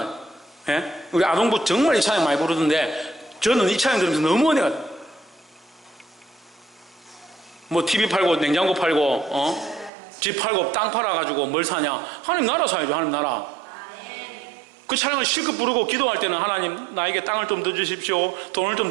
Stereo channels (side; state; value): left; drops out; at 9.9 s